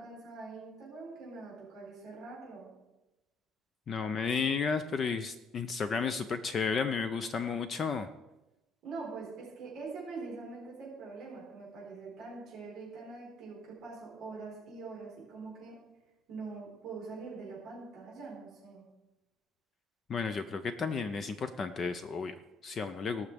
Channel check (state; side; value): quieter; right; 3.8 dB